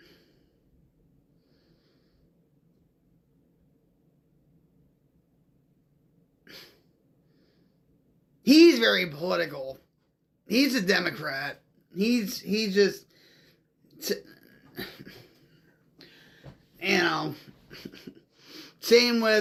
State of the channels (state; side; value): identical; both; correlation 1.00